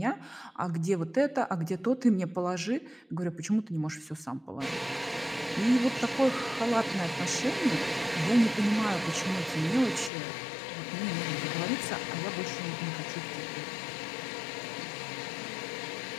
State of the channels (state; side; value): drops out; right; at 10.1 s